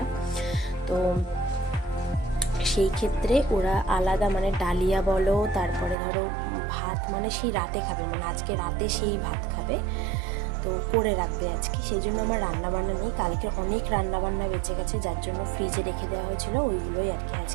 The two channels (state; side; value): drops out; left; at 6.0 s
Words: তো সেই ক্ষেত্রে ওরা আলাদা ডালিয়া বলো, তারপরে ধরো ভাত সেই রাতে খাবে, আজকে রাতে সেই ভাত খাবে, তো করে রাখবে আজকে। সেই জন্য আমার রান্নাবান্না নেই। কালকে অনেক রান্নাবান্না বেঁচে গেছে, যার জন্য ফ্রিজে রেখে দেওয়া হয়েছিল, ওইগুলোই আর কি